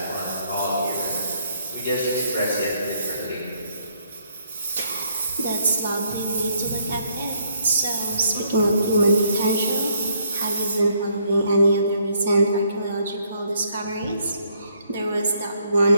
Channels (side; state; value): both; inverted; correlation -0.69